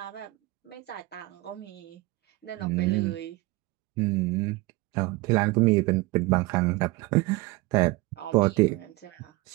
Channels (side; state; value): left; quieter; 21.8 dB